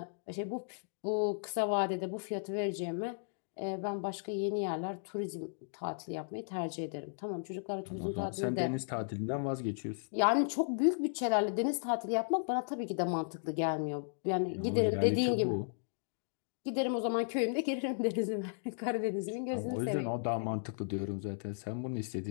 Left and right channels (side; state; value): right; silent; digital silence